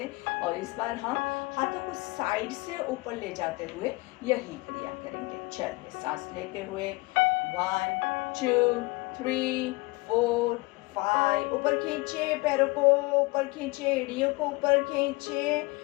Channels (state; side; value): quieter; right; 24.5 dB